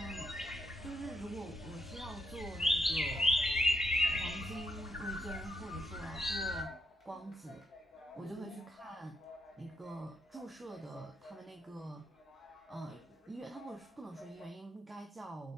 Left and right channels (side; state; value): both; normal; correlation 0.80